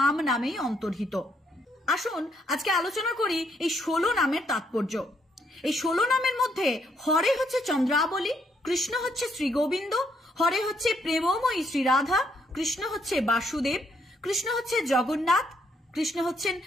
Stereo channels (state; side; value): normal; both; correlation 0.73